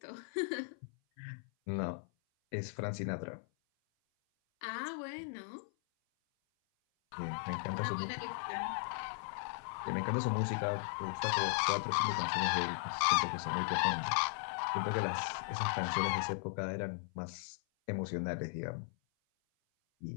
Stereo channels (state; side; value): silent; right; 53 dB below the other